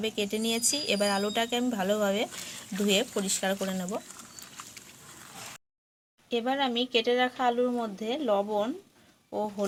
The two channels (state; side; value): identical; both; correlation 1.00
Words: কেটে নিয়েছি। এবার আলুটাকে আমি ভালোভাবে ধুয়ে পরিষ্কার করে নেব। এবার আমি কেটে রাখা আলুর মধ্যে লবণ ও